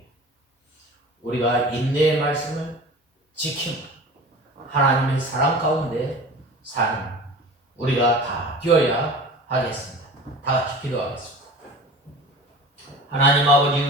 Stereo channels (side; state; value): both; normal; correlation 0.38